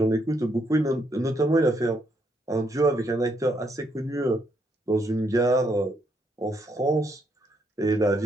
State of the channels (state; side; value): normal; both; correlation 0.75